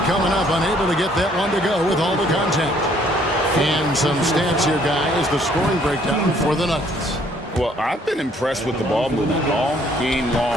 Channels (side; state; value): both; normal; correlation 0.63